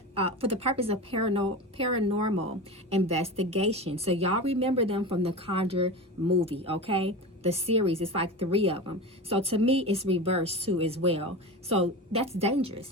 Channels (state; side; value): normal; both; correlation 0.27